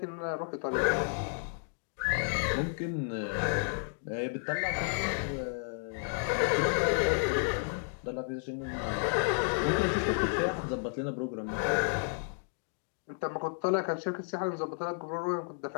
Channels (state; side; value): silent; right; 56 dB below the other